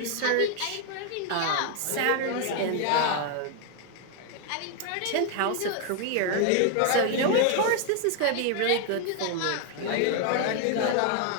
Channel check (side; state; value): both; different; correlation 0.00